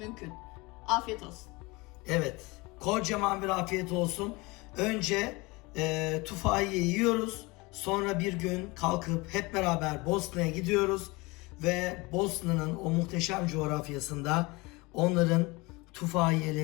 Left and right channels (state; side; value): quieter; right; 24.3 dB